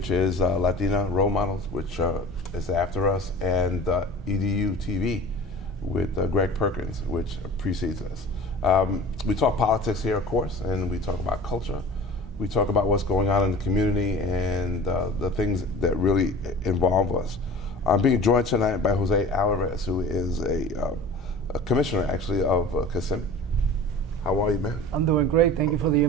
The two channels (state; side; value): normal; both; correlation 0.39